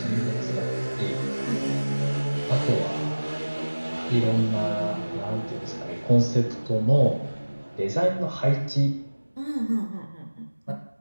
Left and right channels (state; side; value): inverted; both; correlation -1.00